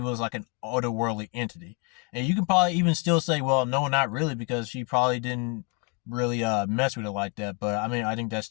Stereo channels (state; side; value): quieter; right; 34.6 dB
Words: was like an otherworldly entity. And you can probably even still say, well, no, not really, because she probably didn't really mess with it like that. But I mean, I think that's